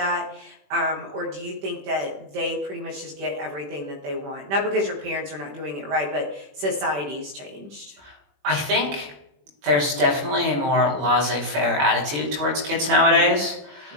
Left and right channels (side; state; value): left; late; 21 ms